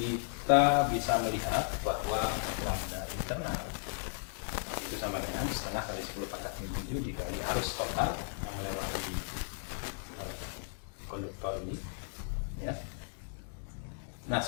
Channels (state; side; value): silent; right; digital silence